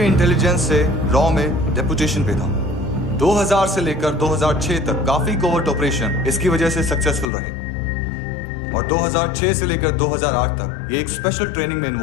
इंटेलिजेंस से रॉ में डेपुटेशन पे था। 2000 से लेकर 2006 तक काफी कोवर्ट ऑपरेशन इसकी वजह से सक्सेसफुल रहे, और 2006 से लेकर 2008 तक ये एक स्पेशल ट्रेनिंग में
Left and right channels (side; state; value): right; drops out; at 7.2 s